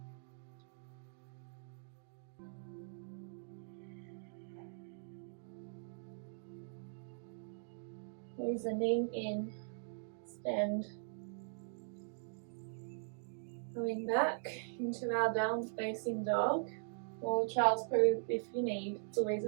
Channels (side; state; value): left; silent; digital silence